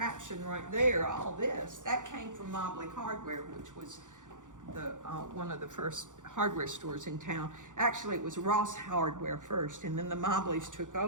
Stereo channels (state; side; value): late; left; 0.87 ms